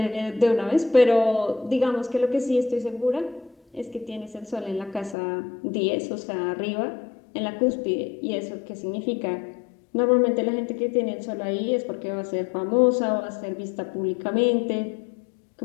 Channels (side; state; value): right; drops out; at 5.2 s